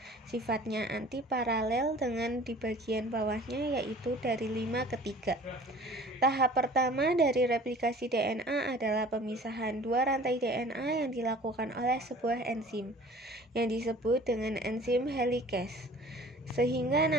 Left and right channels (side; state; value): both; normal; correlation 0.47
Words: Sifatnya antiparalel dengan di bagian bawahnya yaitu dari 5 ke 3. Tahap pertama dari replikasi DNA adalah pemisahan dua rantai DNA yang dilakukan oleh sebuah enzim yang disebut dengan enzim helikase, sehingga